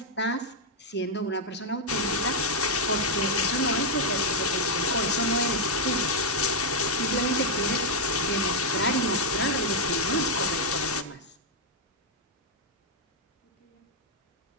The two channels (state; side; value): normal; both; correlation -0.03